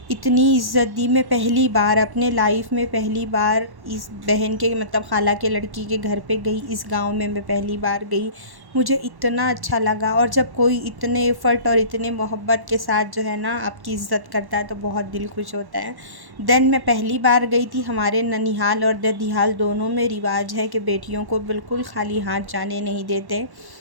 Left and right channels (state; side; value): late; left; 1.1 ms